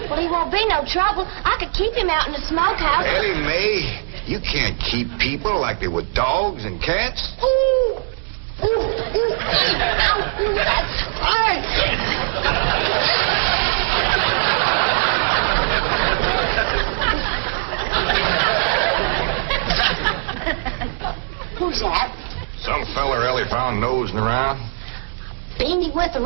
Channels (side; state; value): left; silent; digital silence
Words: Well, he won't be no trouble. I could keep him out in the smokehouse. Elly May, you can't keep people like they were dogs and cats. Ooh. Ooh, ooh. Ow, ooh, that's hard. Who's that? Some feller Elly found nosing around. Beat him with the